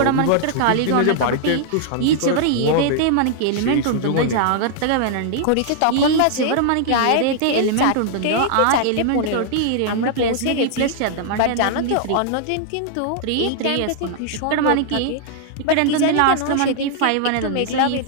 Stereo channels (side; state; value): both; different; correlation -0.01